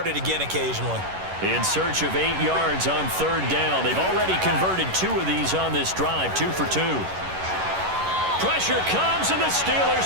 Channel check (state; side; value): late; left; 11 ms